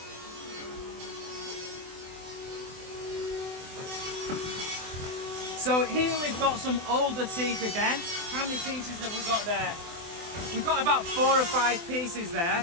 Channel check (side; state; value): left; late; 24 ms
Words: So here we've got some older teak again. How many pieces have we got there? We've got about 4 or 5 pieces there.